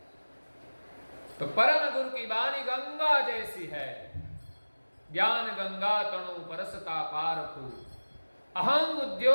तो परम गुरु की वाणी गंगा जैसी है। ज्ञान गंगा तणु परसता पारखु, अहं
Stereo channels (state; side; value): inverted; both; correlation -1.00